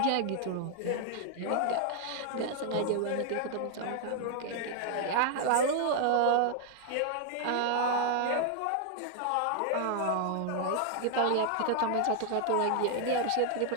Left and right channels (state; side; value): different; both; correlation 0.00